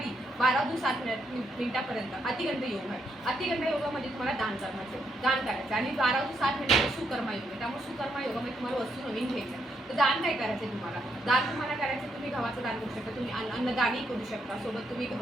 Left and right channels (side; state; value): both; normal; correlation 0.78